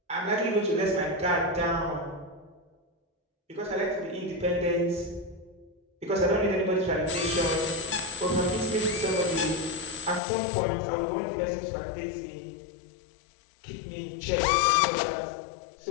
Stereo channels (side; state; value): right; drops out; at 10.2 s